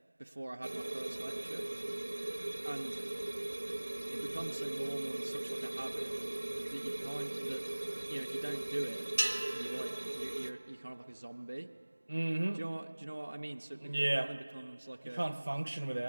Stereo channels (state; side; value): inverted; both; correlation -1.00